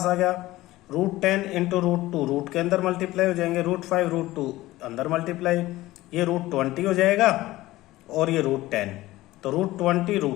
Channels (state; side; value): quieter; right; 17.4 dB